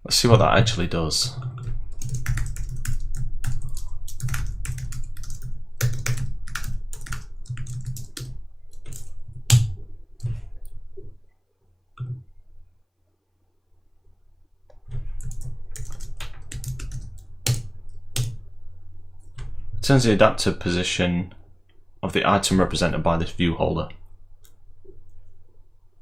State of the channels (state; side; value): identical; both; correlation 1.00